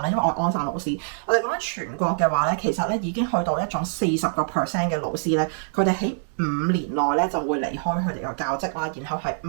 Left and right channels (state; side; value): silent; left; 62 dB below the other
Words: 咧，因為我係安省老師。我哋講緊全國嘅話咧，其實咧已經去到一種40% 嘅老師咧，佢哋喺5年內咧就會離開佢哋個教職啦，然後係